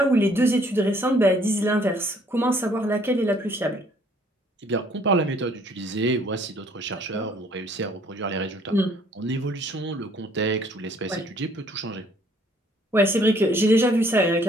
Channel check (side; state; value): both; normal; correlation 0.61